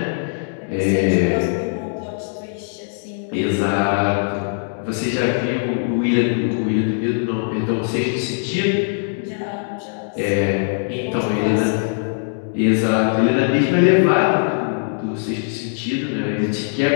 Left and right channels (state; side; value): silent; right; digital silence